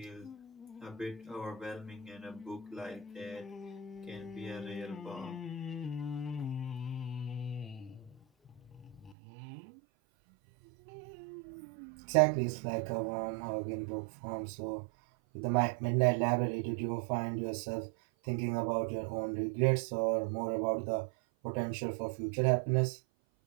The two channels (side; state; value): left; drops out; at 9.2 s